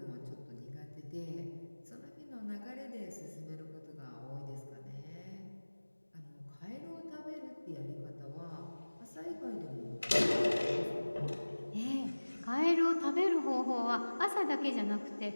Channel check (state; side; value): inverted; both; correlation -1.00